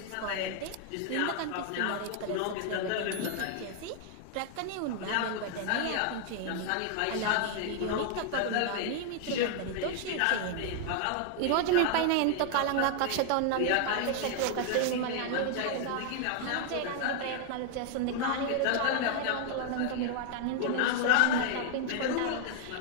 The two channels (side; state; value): both; different; correlation 0.00